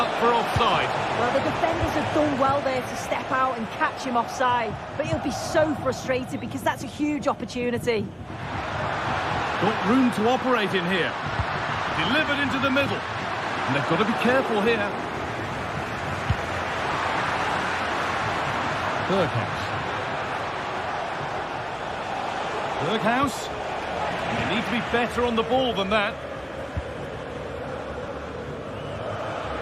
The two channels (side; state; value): both; identical; correlation 1.00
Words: for offside. Well, the defenders have done well there to step out and catch him offside, but he'll be so frustrated because that's a huge opportunity. Got room to operate in here. Delivered into the middle. And they've got to be careful here. Berghouse. They need to be better on the ball than that.